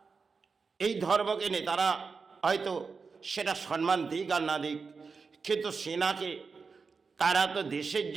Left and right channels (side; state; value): left; quieter; 4.9 dB